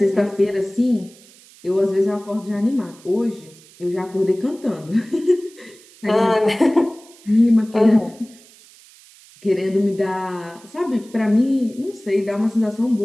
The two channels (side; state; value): right; noise; hiss, 25 dB below the sound